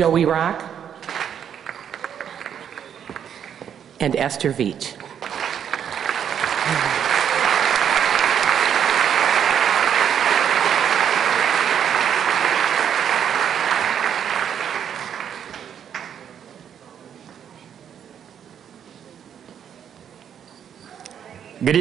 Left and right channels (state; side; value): quieter; left; 8.7 dB